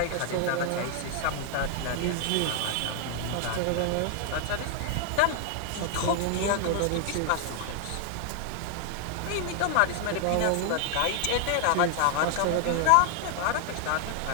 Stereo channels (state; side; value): different; both; correlation 0.00